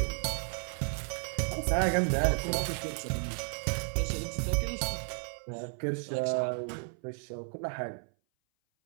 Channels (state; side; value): silent; left; 56 dB below the other